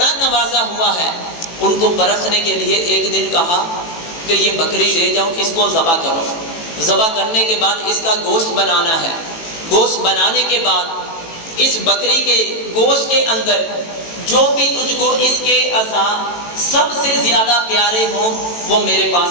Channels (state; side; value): late; right; 18 ms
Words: نوازا ہوا ہے۔ ان کو پرکھنے کے لیے ایک دن کہا کہ یہ بکری لے جاؤ، اس کو ذبح کرو، ذبح کرنے کے بعد اس کا گوشت بنانا ہے، گوشت بنانے کے بعد اس بکری کے گوشت کے اندر جو بھی تجھ کو اس کے اعضاء سب سے زیادہ پیارے ہوں وہ میرے